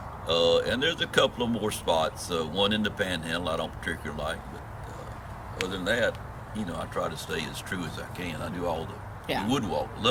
And there's a couple of more spots. One in the Panhandle I don't particularly like, but other than that, I try to stay as true as I can. I do all the wood walk.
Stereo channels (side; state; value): both; identical; correlation 1.00